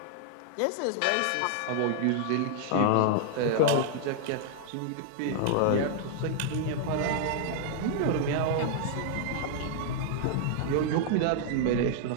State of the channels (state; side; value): different; both; correlation -0.01